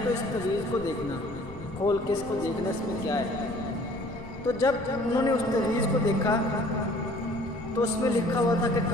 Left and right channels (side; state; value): left; noise; rumble, 15 dB below the sound